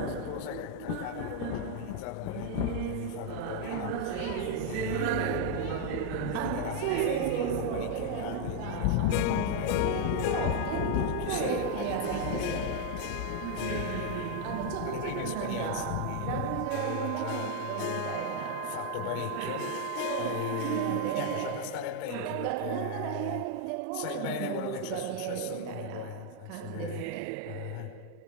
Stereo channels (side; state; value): both; different; correlation 0.00